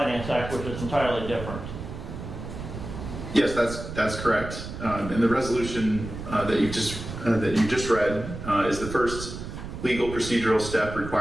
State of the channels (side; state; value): right; noise; rumble, 9 dB below the sound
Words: Act, which is entirely different. Yes, that's correct. And the resolution that you just read is the first legal procedural step